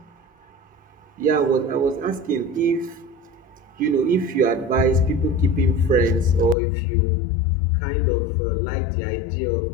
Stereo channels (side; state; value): right; drops out; at 6.6 s